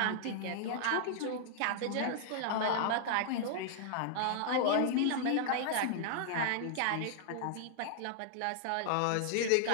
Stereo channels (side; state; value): both; different; correlation -0.01